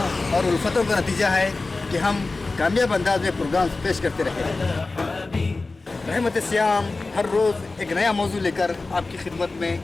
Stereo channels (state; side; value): quieter; right; 3.5 dB